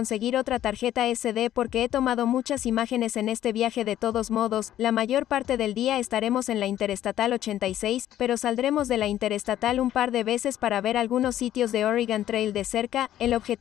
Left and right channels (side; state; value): right; quieter; 12.3 dB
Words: otra tarjeta SD porque he tomado muchas imágenes en este viaje de todos modos, la mayor parte del día estaremos en la Interestatal 86, pero saldremos de la Interestatal un par de veces para ver algunos sitios de Oregon Trail de cerca, el